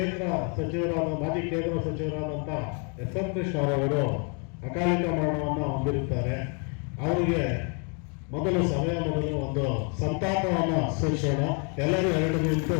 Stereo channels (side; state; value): right; quieter; 38.2 dB